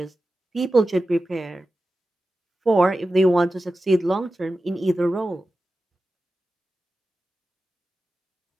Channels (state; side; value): normal; both; correlation 0.93